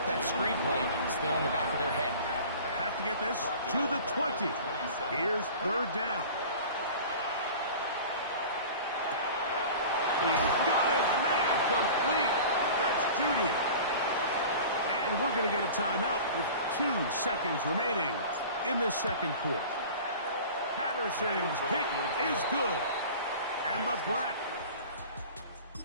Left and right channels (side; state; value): both; inverted; correlation -0.39